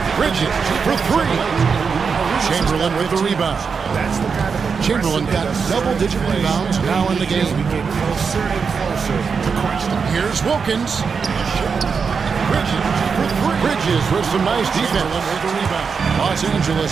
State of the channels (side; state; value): left; quieter; 5.7 dB